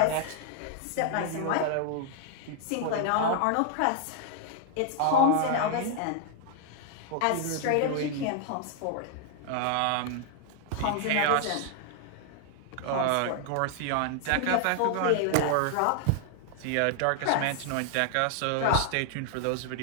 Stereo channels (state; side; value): different; both; correlation 0.00